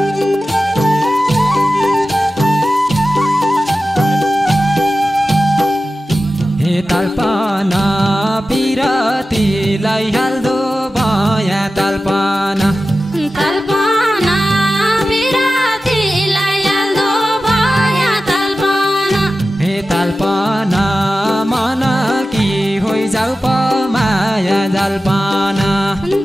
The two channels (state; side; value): normal; both; correlation 0.94